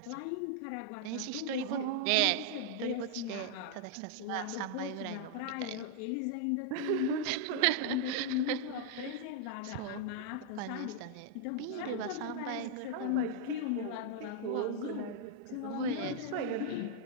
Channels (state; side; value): different; both; correlation -0.01